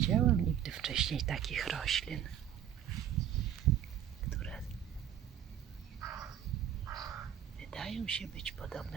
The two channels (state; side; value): quieter; left; 10.2 dB